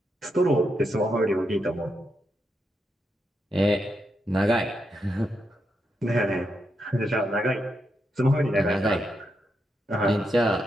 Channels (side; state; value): both; normal; correlation 0.83